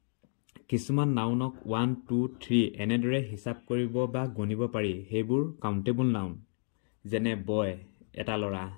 কিছুমান নাউনক 1 2 3 এনেদৰে হিচাপ কৰিব বা গণিব পাৰি সেইবোৰ কাউণ্টেবল নাউন যেনে বয় এটা ল'ৰা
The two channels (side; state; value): right; silent; 56 dB below the other